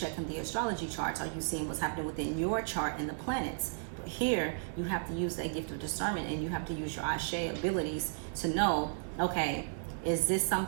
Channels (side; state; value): left; silent; digital silence